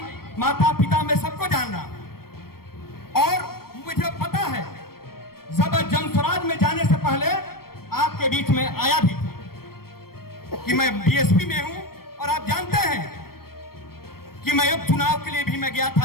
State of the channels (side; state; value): right; late; 0.94 ms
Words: माता पिता मैं सबको जान रहा हूं। और मुझे पता है जब जनसुराज में जाने से पहले आपके बीच में आया भी कि मैं बीएसपी में हूं। और आप जानते हैं कि मैं अब चुनाव के लिए भी मैं गया